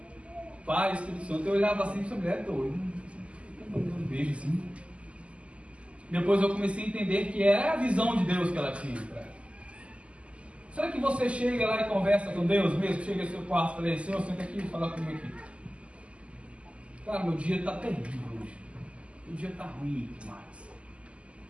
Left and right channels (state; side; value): late; left; 0.058 ms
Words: Pai, Espírito Santo. Eu olhava assim, essa mulher é doida, um beijo assim. Depois eu comecei a entender que era a visão de Deus que ela tinha para ela. Será que você chega lá e conversa com Deus mesmo? Chega ao seu quarto e fala, Senhor, senta aqui e fala comigo aqui. Cara, meu dia está terrível hoje. Meu dia está ruim demais.